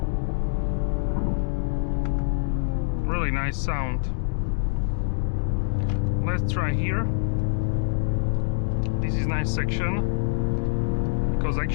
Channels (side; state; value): right; silent; digital silence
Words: Really nice sound. Let's try here. This is nice section because